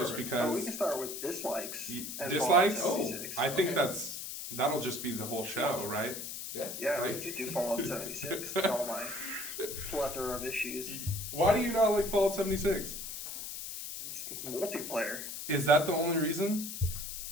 Perfect. because. We can start with dislikes. and Dislikes? Fallout 76. I think Okay. that'll just be the whole show, right? Yeah. Yeah, we like- could do Fallout 76 and all my plethora of issues. Why do you not like Fallout 76? It's multiplayer. Is that the only reason?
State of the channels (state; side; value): noise; left; hiss, 7 dB below the sound